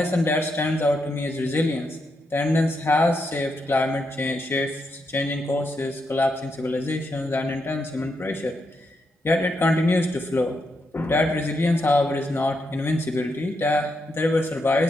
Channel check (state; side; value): normal; both; correlation 0.82